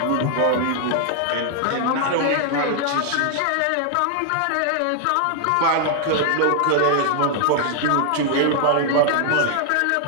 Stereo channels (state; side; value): different; both; correlation 0.00